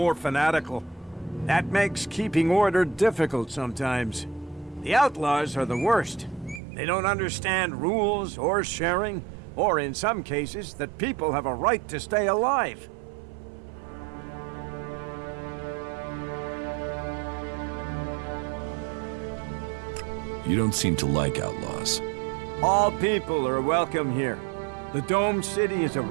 fanatical. That makes keeping order difficult sometimes. The outlaws are the worst. They don't understand rules or sharing, or in some cases, that people have a right to stay alive. You don't seem to like outlaws. All people are welcome here. The domed city is a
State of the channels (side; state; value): left; drops out; at 6.6 s